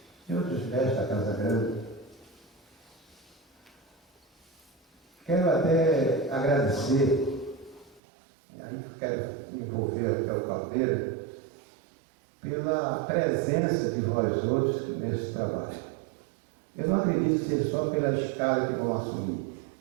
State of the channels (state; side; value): drops out; left; at 8.0 s